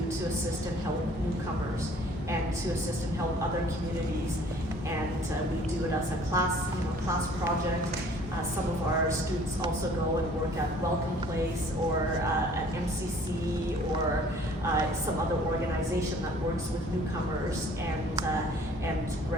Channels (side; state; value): both; normal; correlation 0.54